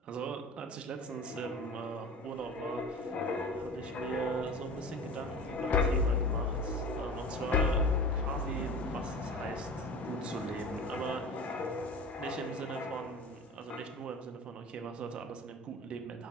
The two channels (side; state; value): both; normal; correlation 0.36